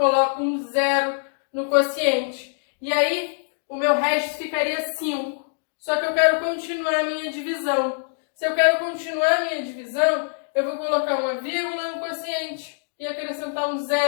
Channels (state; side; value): silent; right; digital silence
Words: um 0 no quociente. E aí, o meu resto ficaria 5. Só que eu quero continuar a minha divisão. Se eu quero continuar a minha divisão, eu vou colocar uma vírgula no quociente e acrescentar um